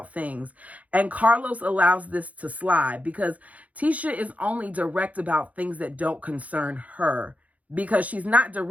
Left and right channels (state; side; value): late; left; 0.070 ms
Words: things. And Carlos allows this to slide because Tisha is only direct about things that don't concern her, because she's not